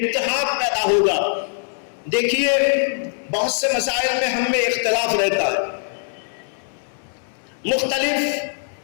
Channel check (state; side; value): silent; right; digital silence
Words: پیدا ہوگا، دیکھیے بہت سے مسائل میں ہم میں اختلاف رہتا ہے،